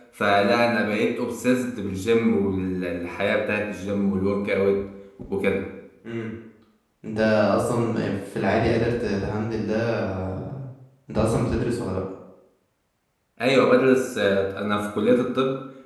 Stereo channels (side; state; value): both; identical; correlation 1.00